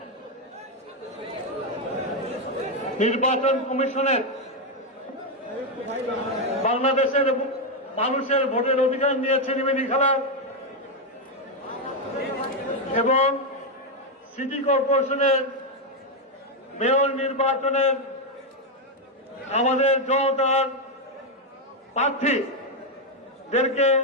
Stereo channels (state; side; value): normal; both; correlation 0.04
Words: নির্বাচন কমিশনের বাংলাদেশের মানুষের ভোটের অধিকার নিয়ে ছিনিমিনি খেলা এবং সিটি কর্পোরেশনের মেয়র নির্বাচনের আমাদের জনতার প্রার্থীদেরকে